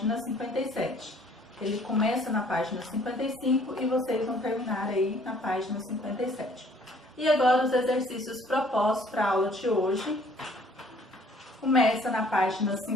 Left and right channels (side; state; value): both; normal; correlation 0.58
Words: 57. Ele começa na página 55 e vocês vão terminar aí na página 57. E agora os exercícios propostos para a aula de hoje. Começa na página